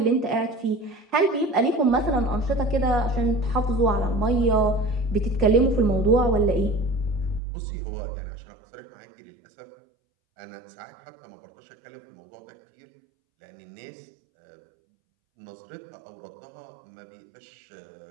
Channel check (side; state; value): left; drops out; at 7.4 s